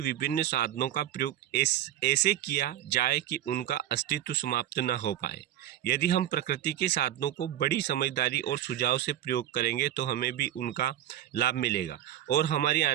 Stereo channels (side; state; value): left; quieter; 12.2 dB